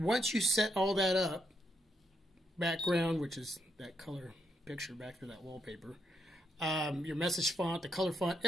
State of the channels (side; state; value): both; normal; correlation 0.79